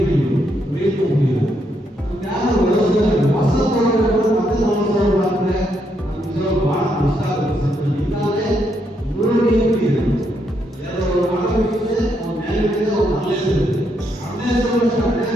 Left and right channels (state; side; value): normal; both; correlation 0.77